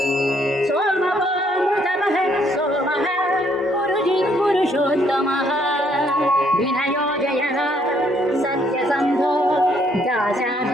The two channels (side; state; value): both; normal; correlation 0.68